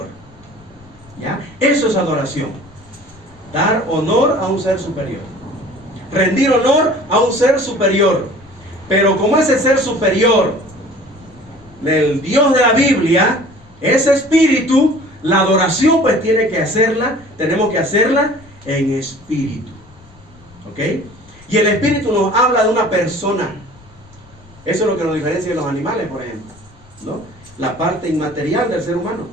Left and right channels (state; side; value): noise; left; rumble, 25 dB below the sound